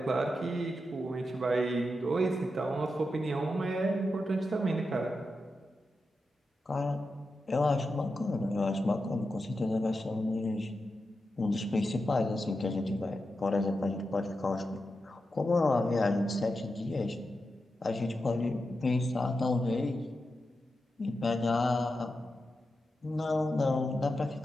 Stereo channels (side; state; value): both; normal; correlation 0.89